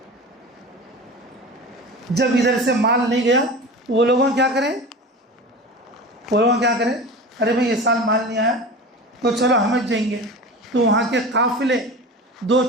جب ادھر سے مال نہیں گیا وہ لوگوں کیا کریں ارے بھائی یہ سال مال نہیں آیا تو چلو ہم جائیں گے. تو وہاں کے قافلے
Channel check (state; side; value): normal; both; correlation 0.32